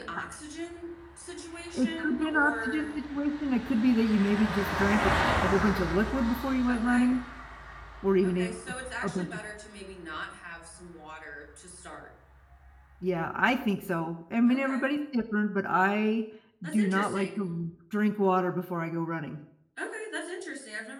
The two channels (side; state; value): both; identical; correlation 1.00